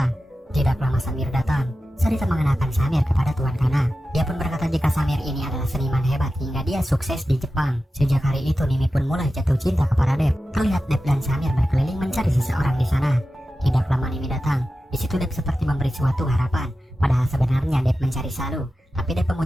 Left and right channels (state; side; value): normal; both; correlation 0.93